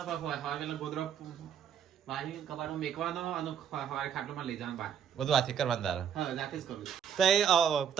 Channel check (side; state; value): left; quieter; 8.3 dB